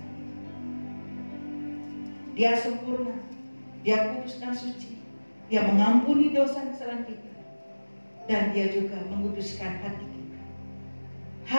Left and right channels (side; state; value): both; inverted; correlation -1.00